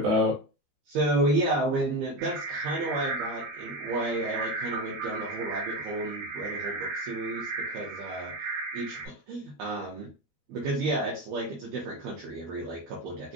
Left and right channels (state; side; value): late; left; 12 ms